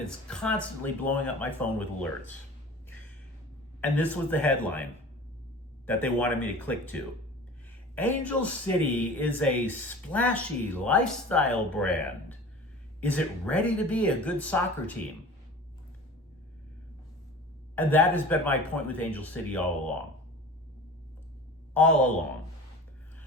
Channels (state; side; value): normal; both; correlation 0.39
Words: is constantly blowing up my phone with alerts. And this was the headline. that they wanted me to click to. Angel City is a splashy lifestyle brand. Is it ready to be a good soccer team? And that has been my point with Angel City all along. All along.